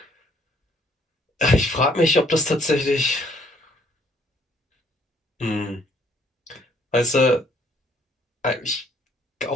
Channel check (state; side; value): normal; both; correlation 0.64